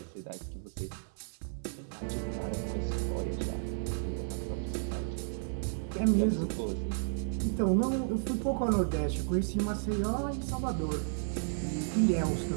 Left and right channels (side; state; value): left; silent; 56 dB below the other